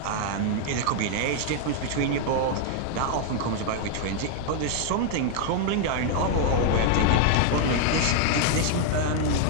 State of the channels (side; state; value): both; different; correlation 0.00